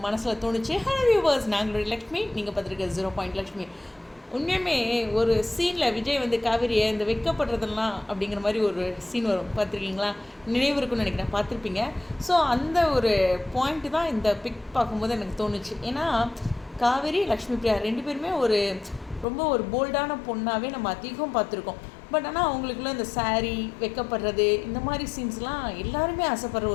மனசில் தோணுச்சு. ஹலோ வியூவர்ஸ், நாங்களுடைய லக்ஷ்மி, நீங்கள் பார்த்துருக்க 0 லக்ஷ்மி. உண்மையுமே ஒரு சீனில் விஜய் வந்து காவேரியை இந்த வைக்கப்படுறதெல்லாம் அப்படிங்கிற மாதிரி ஒரு சீன் வரும், பார்த்துருக்கீங்களா? நினைவு இருக்குன்னு நினைக்கிறேன், பார்த்துருப்பீங்க. ஸோ அந்த ஒரு பாயிண்ட்டு தான் இந்த பிக் பார்க்கும்போது எனக்கு தோணுச்சு. ஏன்னா காவேரி, லக்ஷ்மி பிரியா ரெண்டு பேருமே ரொம்ப ஒரு போல்டான பொண்ணாகவே நம்ம அதிகம் பார்த்துருக்கோம். பட் ஆனால் அவங்களுக்குள்ள இந்த சாரீ வைக்கப்படுறது இந்த மாதிரி சீன்ஸ்லாம் எல்லாருமே ஆசைப்படுற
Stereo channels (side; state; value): right; drops out; at 19.2 s